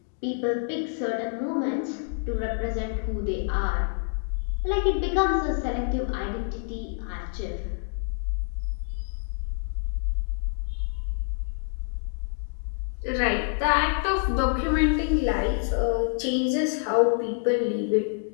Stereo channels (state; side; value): silent; right; digital silence